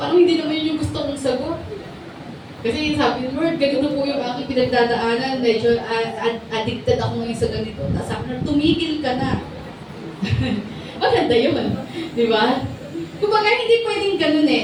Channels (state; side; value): identical; both; correlation 1.00